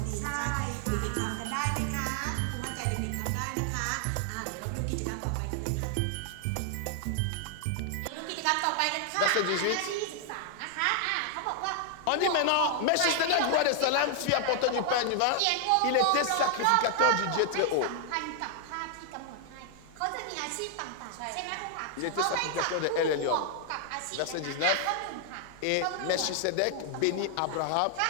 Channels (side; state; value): both; different; correlation 0.00